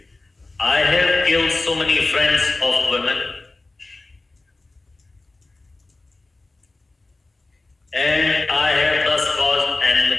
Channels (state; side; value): quieter; right; 3.1 dB